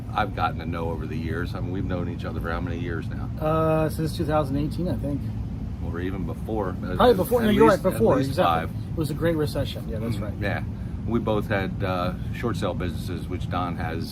gotten to know over the years. I mean, we've known each other for how many years now? Since 2018, I think. Or even before. Probably before. No, you're right. Before. At least Exactly. 5. It was a great recession. Yeah, that's right. Yeah, we both had short sale businesses, which Don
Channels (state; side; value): identical; both; correlation 1.00